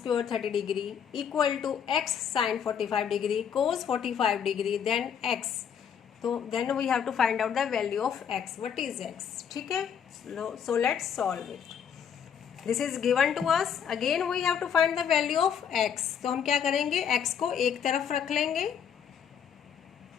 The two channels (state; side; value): quieter; right; 8.0 dB